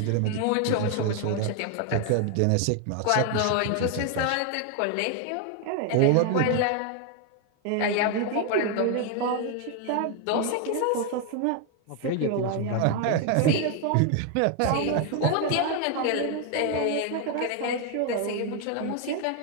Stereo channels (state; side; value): different; both; correlation 0.01